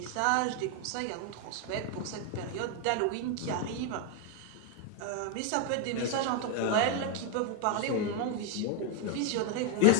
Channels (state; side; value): different; both; correlation 0.01